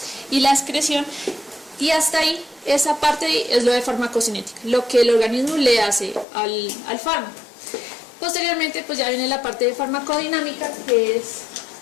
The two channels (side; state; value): right; drops out; at 6.2 s